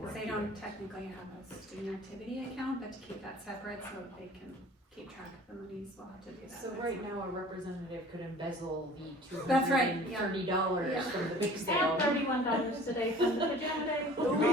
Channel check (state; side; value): normal; both; correlation 0.47